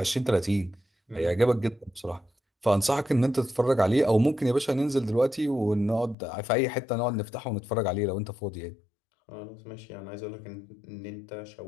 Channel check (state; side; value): drops out; right; at 6.2 s